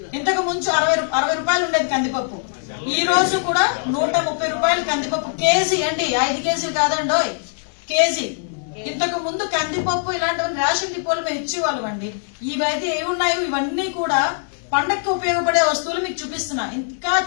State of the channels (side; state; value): right; silent; digital silence